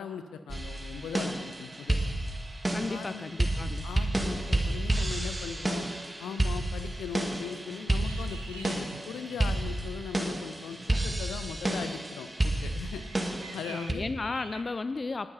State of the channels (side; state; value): both; normal; correlation 0.92